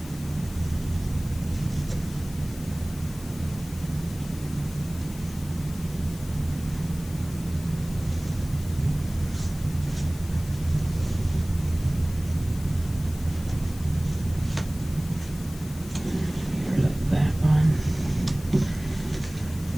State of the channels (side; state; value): left; noise; hiss, 17 dB below the sound